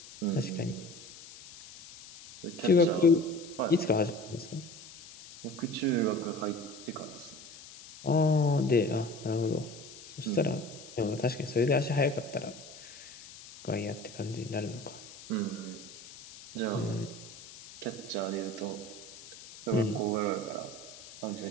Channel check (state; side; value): noise; left; hiss, 17 dB below the sound